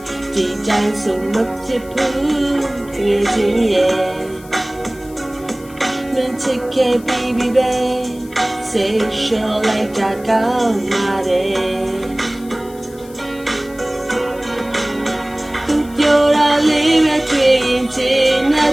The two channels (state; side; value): noise; left; hiss, 23 dB below the sound